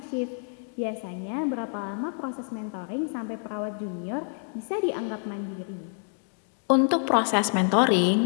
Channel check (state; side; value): silent; right; 60 dB below the other